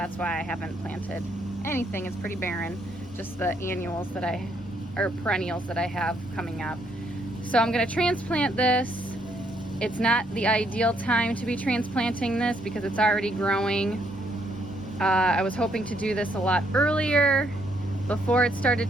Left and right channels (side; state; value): both; normal; correlation 0.71